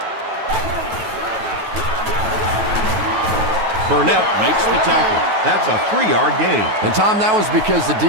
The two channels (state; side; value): late; left; 9.2 ms